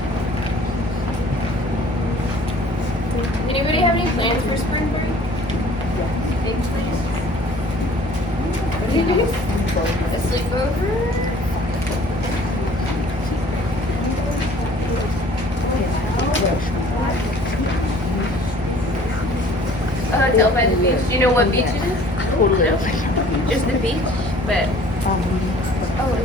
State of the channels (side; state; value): both; normal; correlation 0.52